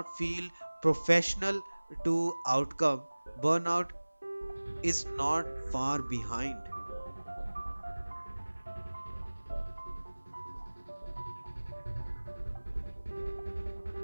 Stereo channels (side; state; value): both; inverted; correlation -1.00